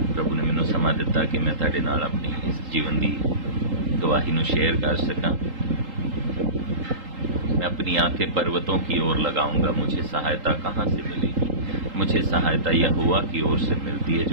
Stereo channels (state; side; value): late; left; 3.8 ms